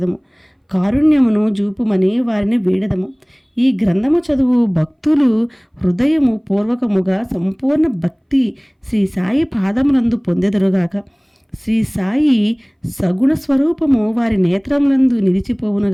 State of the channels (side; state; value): both; identical; correlation 1.00